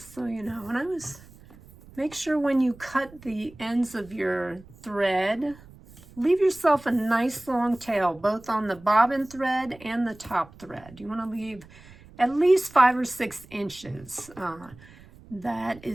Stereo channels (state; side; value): noise; right; rumble, 22 dB below the sound